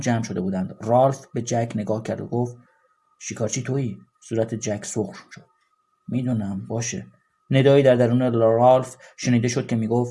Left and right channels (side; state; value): both; identical; correlation 1.00